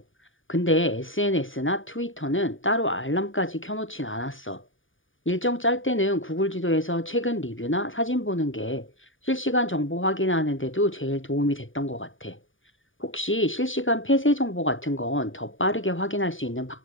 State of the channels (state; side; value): late; right; 0.57 ms